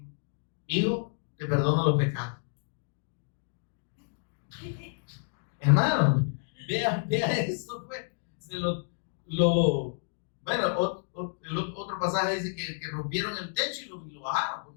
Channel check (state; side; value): silent; right; digital silence